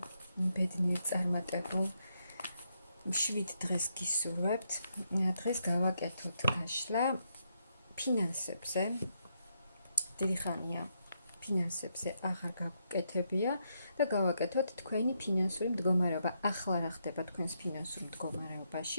ბედნიერ წარმატებულ 7 დღეს გისურვებთ. დღეს გავაკეთოთ გაშლა ფინანსებზე. დიდი ხანია ფინანსებზე აღარ გავუკეთებია და გავაკეთოთ თქვენი ფინანსური მდგომარეობა. ახლა რა ხდება თქვენს ფინანსურ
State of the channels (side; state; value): both; inverted; correlation -0.79